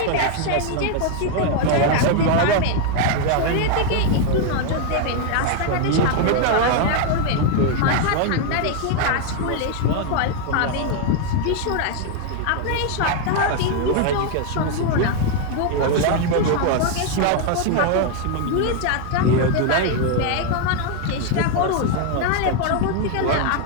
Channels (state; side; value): different; both; correlation 0.01